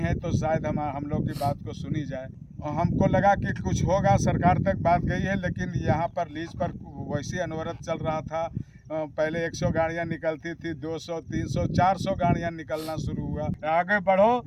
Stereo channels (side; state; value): both; identical; correlation 1.00